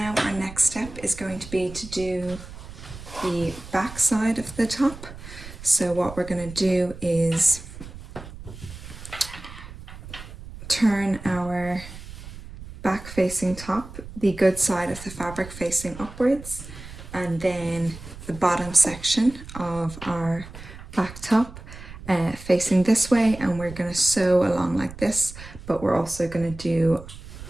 our next step is going to be to do the back side of the top. So what we're going to do is turn our back facing top, the good side of the fabric facing upwards, and then the bottom section of our back top facing this way, and we're going to sew along like this, but we're also going to do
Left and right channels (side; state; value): right; noise; rumble, 14 dB below the sound